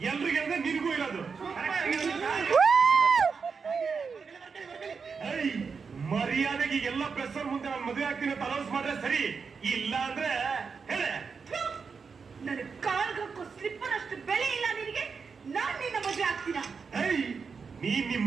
ಎಲ್ರಿಗೆ ಅಂದ್ರೆ ನಿನಗೂ ಇರೋದು ಮರ್ಯಾದೆಗೆ ಎಲ್ಲ ಪ್ರೆಸರ್ ಮುಂದೆ ನಾನು ಮದುವೆ ಆಗ್ತೀನಿ ಅಂತ ಅನೌನ್ಸ್ ಮಾಡ್ರೆ ಸರಿ, ಇಲ್ಲ ಅಂದ್ರೆ ಹೇಳೆ. ನನ್ನ ಕಾಲ್ಗಕ್ಕೂ ಸ್ಲಿಪ್ಪರ್ ಅಷ್ಟು ಬೆಲೆ ಇಲ್ಲ ನಿನಗೆ, ನಾನ್ ನಿನ್ನ ಮದುವೆ ಆಗ್ತೀನ. ನೀನ್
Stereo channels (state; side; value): quieter; left; 5.4 dB